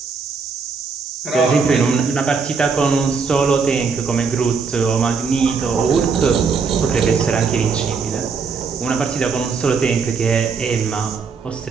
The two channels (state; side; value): quieter; left; 5.2 dB